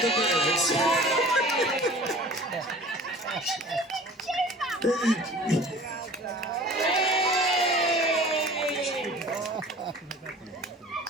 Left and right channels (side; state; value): both; normal; correlation 0.45